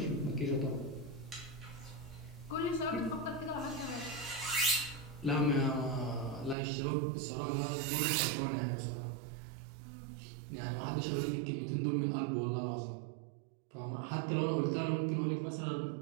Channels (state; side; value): drops out; left; at 6.6 s